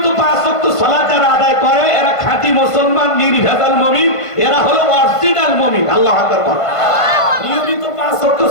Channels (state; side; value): late; right; 1.5 ms